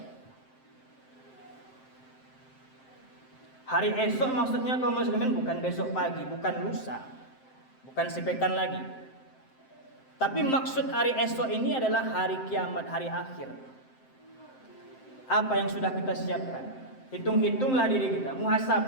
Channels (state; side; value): late; right; 7.7 ms